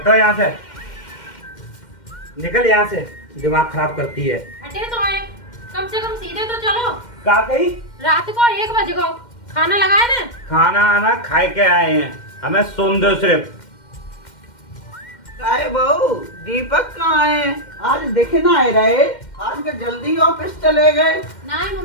यहाँ से, निकल यहाँ से, दिमाग खराब करती है। हटे तो आए, कम से कम सीधे तो चलो। का कही? रात को 1 बजे को खाना लगाए ना। खाना आना खाए के आए हैं, हमें सोन दो सिर्फ। काय बहू दीपक कहाँ है? आज देखे ना आए रहे, आज के जल्दी ऑफिस चले गए। नहीं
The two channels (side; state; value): right; late; 2.1 ms